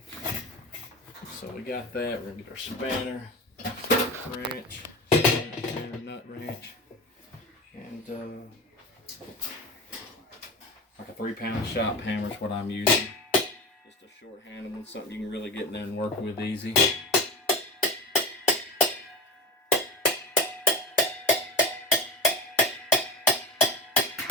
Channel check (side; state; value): both; normal; correlation 0.26